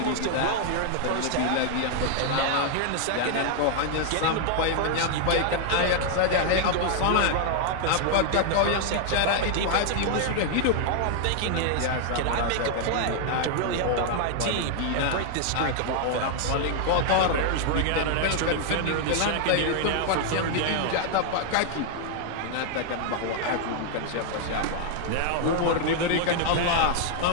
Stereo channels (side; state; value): both; different; correlation 0.00